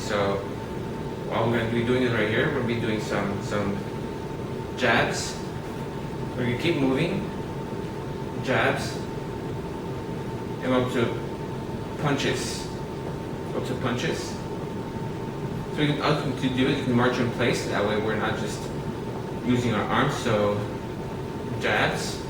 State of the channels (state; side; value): identical; both; correlation 1.00